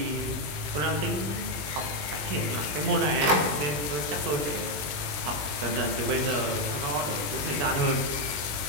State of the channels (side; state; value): left; late; 20 ms